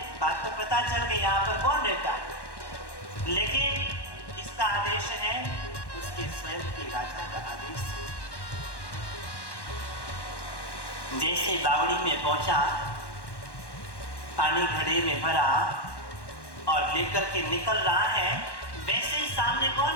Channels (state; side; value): late; right; 1.1 ms